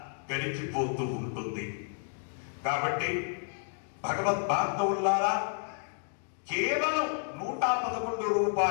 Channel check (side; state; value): right; silent; 57 dB below the other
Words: గడిచిపోతూ ఉంటుంది. కాబట్టి భగవద్భాగవులారా, కేవలం 111